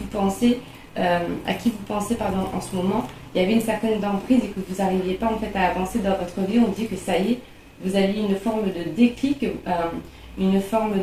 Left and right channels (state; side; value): identical; both; correlation 1.00